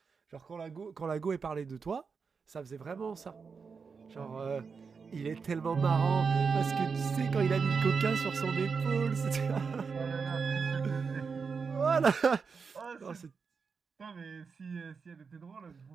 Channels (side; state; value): left; quieter; 5.4 dB